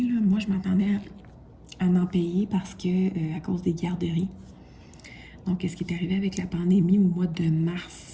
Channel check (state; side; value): identical; both; correlation 1.00